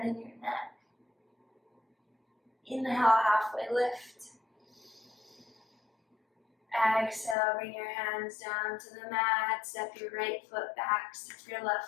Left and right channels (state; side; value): drops out; right; at 7.4 s